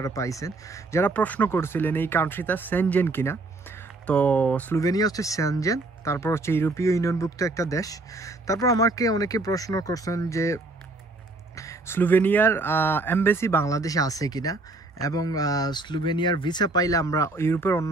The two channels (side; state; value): left; quieter; 3.1 dB